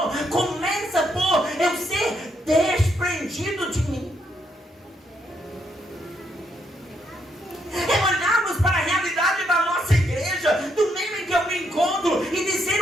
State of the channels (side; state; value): both; normal; correlation 0.76